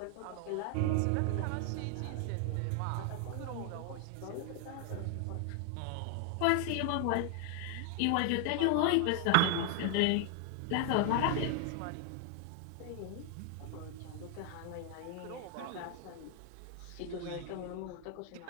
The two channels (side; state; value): both; different; correlation 0.00